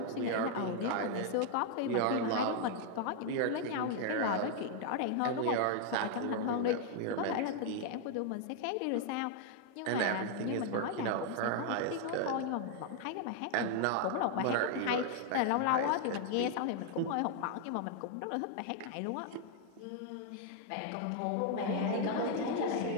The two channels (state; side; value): different; both; correlation 0.00